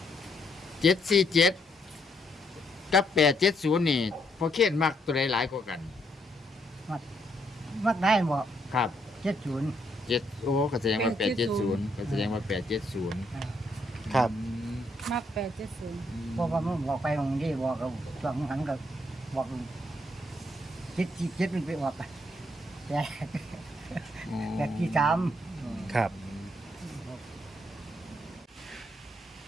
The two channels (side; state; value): both; normal; correlation 0.74